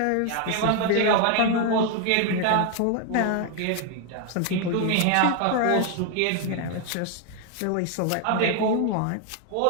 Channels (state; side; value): different; both; correlation 0.00